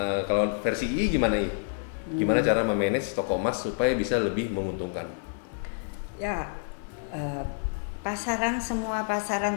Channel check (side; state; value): right; silent; 57 dB below the other